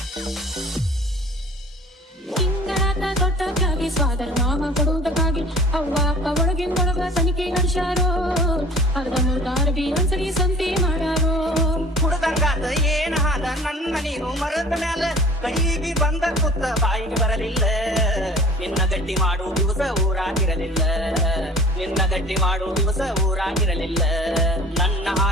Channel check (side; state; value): both; normal; correlation 0.46